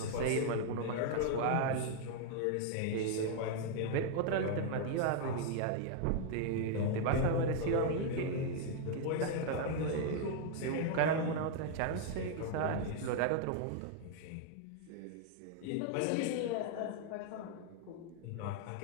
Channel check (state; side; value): different; both; correlation 0.00